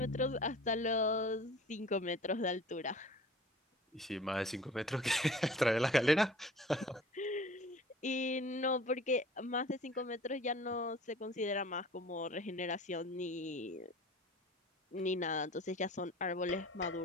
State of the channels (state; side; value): normal; both; correlation 0.44